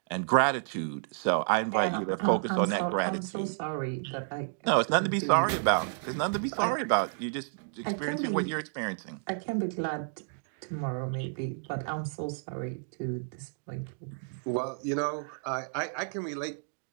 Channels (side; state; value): left; silent; digital silence